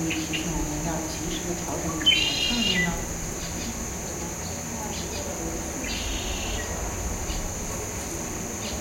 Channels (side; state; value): both; identical; correlation 1.00